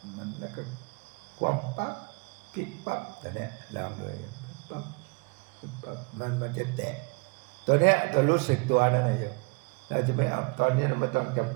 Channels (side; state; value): left; quieter; 32.0 dB